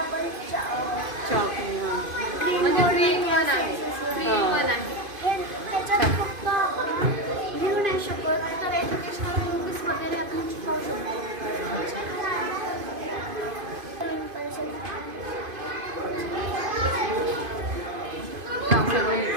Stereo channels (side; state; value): left; late; 2.5 ms